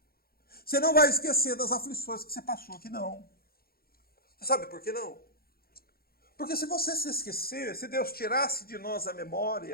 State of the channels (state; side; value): late; right; 0.44 ms